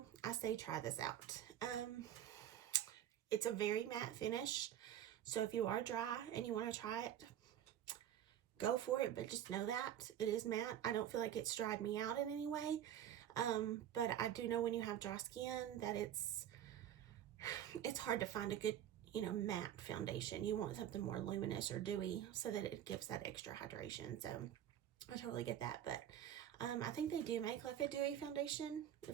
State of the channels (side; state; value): left; quieter; 10.8 dB